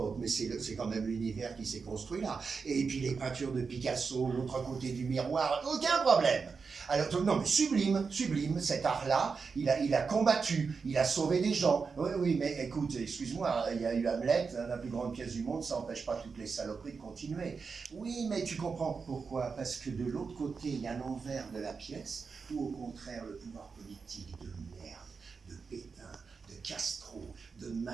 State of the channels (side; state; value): left; quieter; 5.1 dB